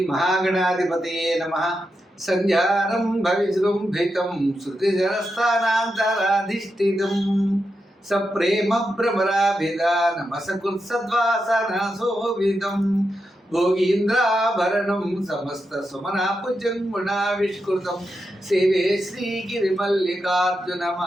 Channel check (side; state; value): both; normal; correlation 0.87